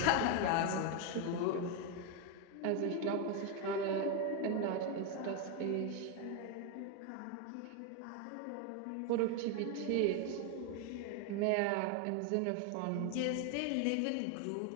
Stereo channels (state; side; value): different; both; correlation 0.01